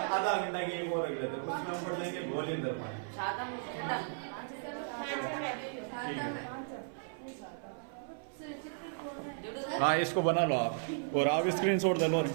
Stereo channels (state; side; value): silent; left; 54 dB below the other